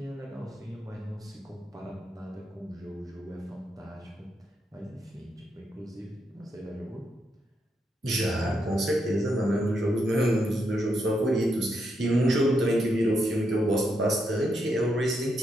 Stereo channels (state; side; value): normal; both; correlation 0.80